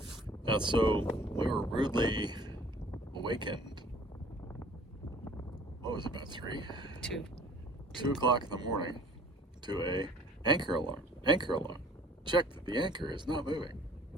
So we were rudely awakened. What was it, about 3? 2 o'clock in the morning to a anchor alarm. Anchor alarm. Check that the anchor is not moving.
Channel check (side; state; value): both; normal; correlation 0.52